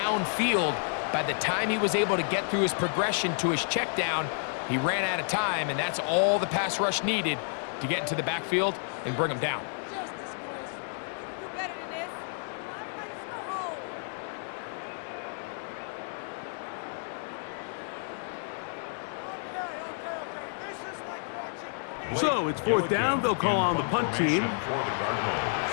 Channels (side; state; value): right; silent; 58 dB below the other